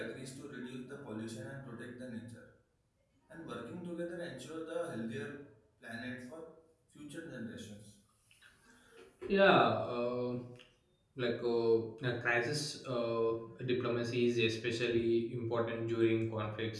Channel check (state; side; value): identical; both; correlation 1.00